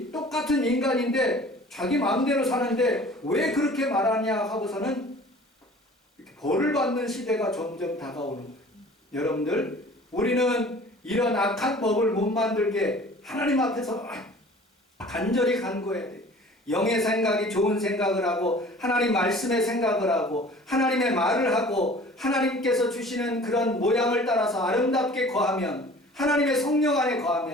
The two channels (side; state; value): both; normal; correlation 0.47